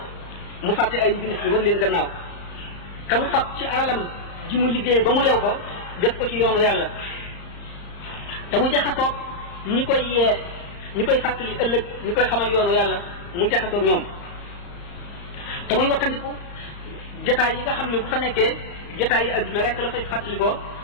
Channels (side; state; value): right; late; 34 ms